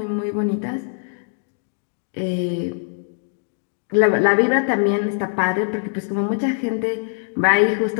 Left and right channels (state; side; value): silent; right; digital silence